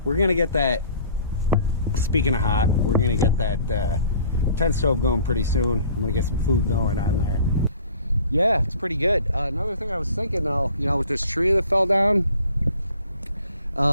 We're gonna get that, speaking of hot, we're gonna get that tent stove going pretty soon. I'm gonna get some food going on there. Yeah, it's pretty good. Another thing I was thinking though, you know, with this tree that fell down,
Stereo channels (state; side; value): inverted; both; correlation -0.51